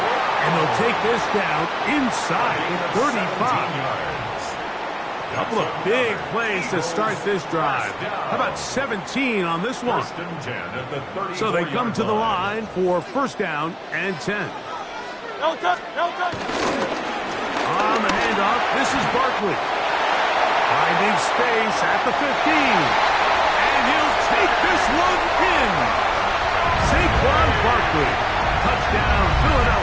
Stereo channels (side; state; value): both; identical; correlation 1.00